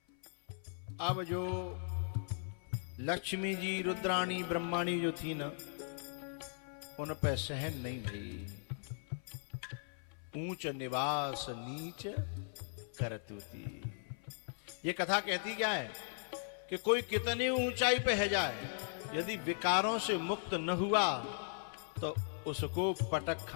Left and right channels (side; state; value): right; silent; 52 dB below the other